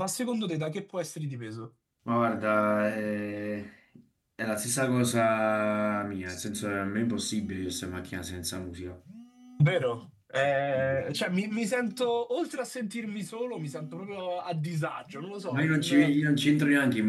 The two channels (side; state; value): both; identical; correlation 1.00